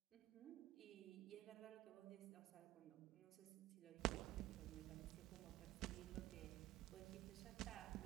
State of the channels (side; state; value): left; quieter; 15.4 dB